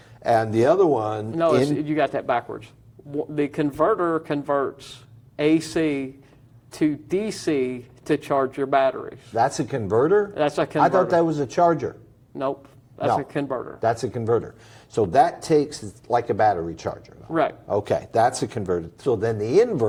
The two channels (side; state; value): both; identical; correlation 1.00